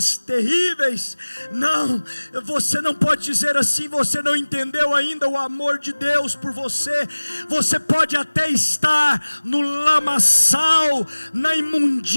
terríveis. Não, você não pode dizer assim, você não entendeu ainda o amor de Deus por você. Você pode até estar no lamaçal, na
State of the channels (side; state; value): both; inverted; correlation -1.00